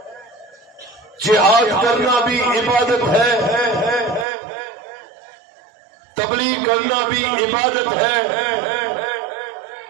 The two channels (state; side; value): drops out; left; at 4.2 s